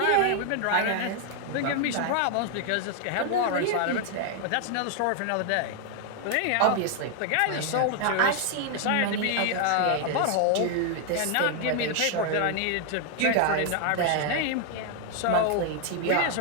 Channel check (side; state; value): both; different; correlation 0.00